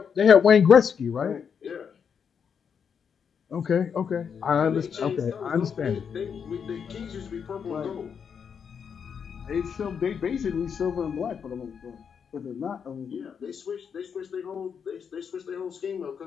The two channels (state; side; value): quieter; right; 7.0 dB